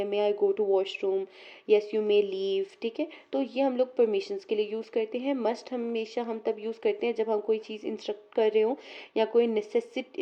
may I go to washroom, yes you may leave, ठीक है। तो ये हम लोग परमिशंस के लिए यूज़ करते हैं। मस्ट हमेशा हम तब यूज़ करते हैं जब हम कोई चीज़ इंस्ट्रक्ट कर रहे हो या कोई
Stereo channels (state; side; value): identical; both; correlation 1.00